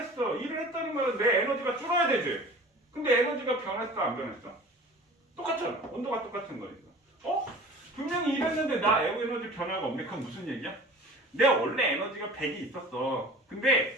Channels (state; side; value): normal; both; correlation 0.42